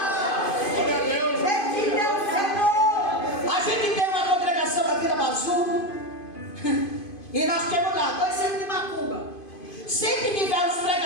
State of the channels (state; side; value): late; right; 2.5 ms